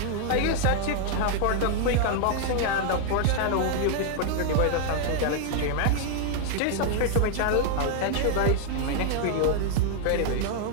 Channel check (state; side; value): different; both; correlation 0.00